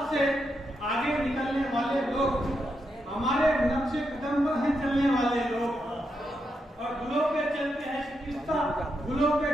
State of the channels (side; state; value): both; normal; correlation 0.83